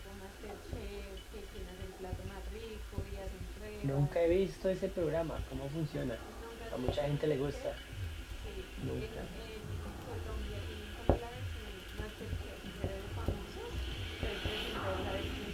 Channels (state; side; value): identical; both; correlation 1.00